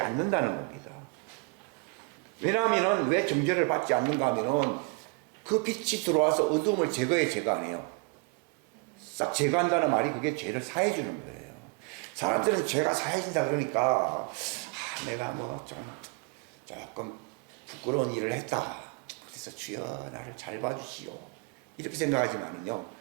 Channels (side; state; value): left; quieter; 31.3 dB